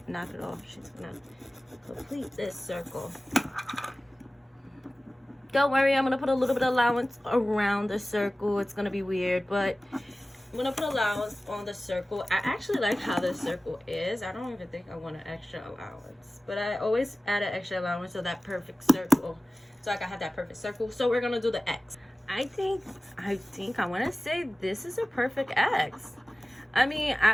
knock it off. She's gonna complete this circle. Don't worry, I'm gonna put a little bit of allowance around the circle. It's gonna be weird, but I'm gonna put allowance on the circle. I actually like how the circle is. I don't even think I want an extra allowance, but I always add an extra allowance to that perfect circle, so I can have that perfect circle. So we're gonna do the X. I think I want to say this is a perfect X. I mean,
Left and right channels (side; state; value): both; normal; correlation 0.97